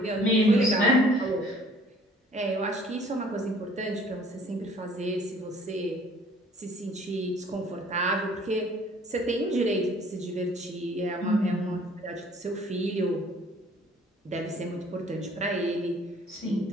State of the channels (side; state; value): both; normal; correlation 0.55